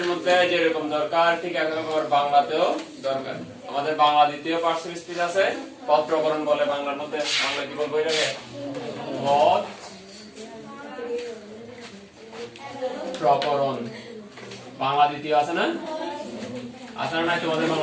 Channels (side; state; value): both; identical; correlation 1.00